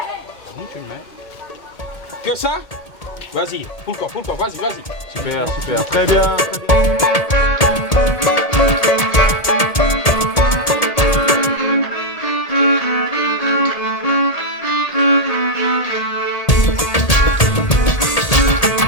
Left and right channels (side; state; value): right; late; 1.8 ms